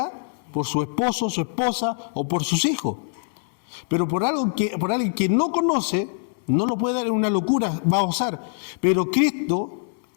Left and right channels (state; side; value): silent; right; 61 dB below the other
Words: por su esposo, su esposa o por sus hijos. Pero por alguien que no conoce, no lo puede dar en una locura, va a osar. Pero Cristo